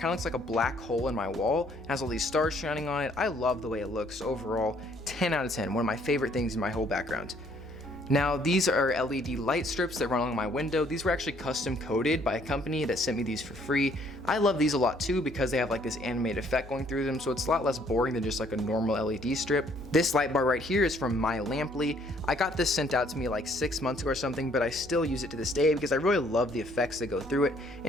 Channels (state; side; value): noise; left; hum, 20 dB below the sound